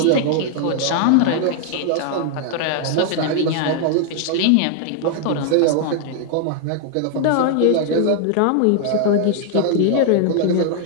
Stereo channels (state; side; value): different; both; correlation 0.00